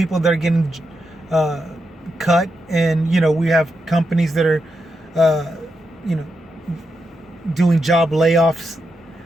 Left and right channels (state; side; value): normal; both; correlation 0.85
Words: that are getting cut, and we have companies that are doing job layoffs,